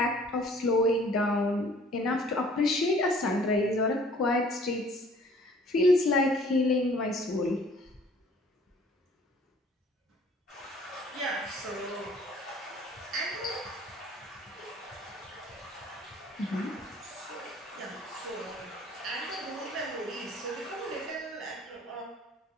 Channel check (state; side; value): normal; both; correlation 0.54